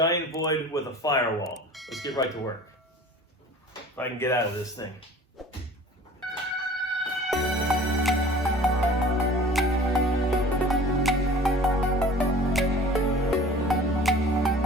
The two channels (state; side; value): normal; both; correlation 0.44